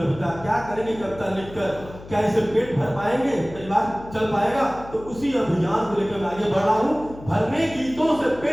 क्या करेंगे कविता लिखकर, क्या इसे पेट भर पाएंगे, परिवार चल पाएगा? तो उसी अभियान को लेकर मैं आगे बढ़ रहा हूँ। भरने गीतों से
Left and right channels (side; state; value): left; noise; hum, 17 dB below the sound